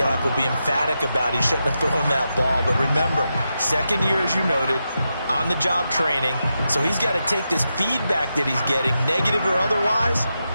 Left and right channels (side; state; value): both; inverted; correlation -0.87